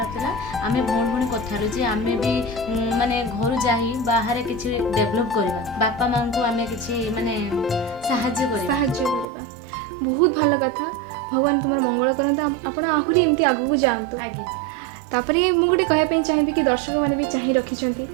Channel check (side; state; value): left; drops out; at 9.2 s